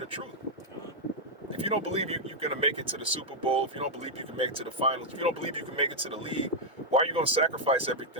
truth? If you don't believe you're going to make it to the Super Bowl, if you don't believe you can make it to the finals, if you don't believe you can make it to the league, why are you going to sacrifice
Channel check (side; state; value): both; normal; correlation -0.04